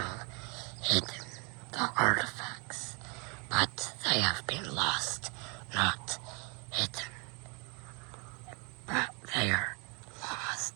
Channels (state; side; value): quieter; left; 32.7 dB